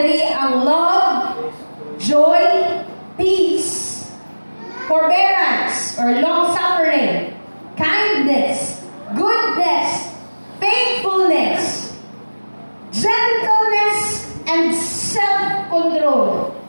ang love, joy, peace, forbearance or long-suffering, kindness, goodness, faithfulness, gentleness, and self-control.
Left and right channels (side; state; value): both; inverted; correlation -1.00